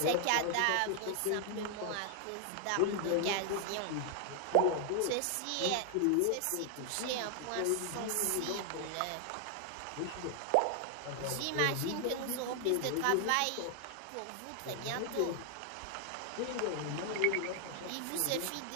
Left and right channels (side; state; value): both; different; correlation 0.00